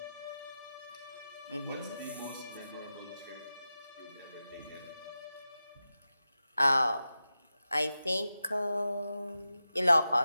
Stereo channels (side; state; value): both; inverted; correlation -0.92